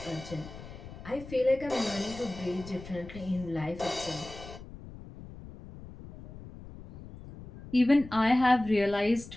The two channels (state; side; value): noise; left; rumble, 15 dB below the sound